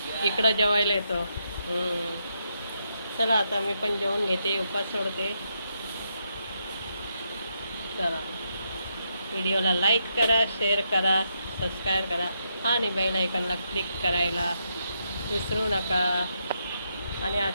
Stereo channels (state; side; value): inverted; both; correlation -0.80